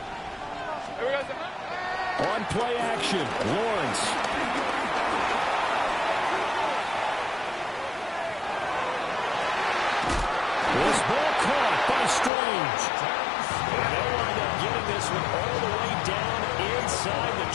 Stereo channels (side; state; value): right; drops out; at 12.3 s